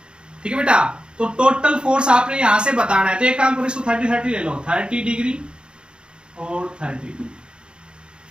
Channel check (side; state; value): left; late; 0.052 ms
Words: ठीक है बेटा। तो टोटल फोर्स आपने यहां से बताना है। तो एक काम करो, इसको 30-30 ले लो, 30 डिग्री और 30 डिग्री,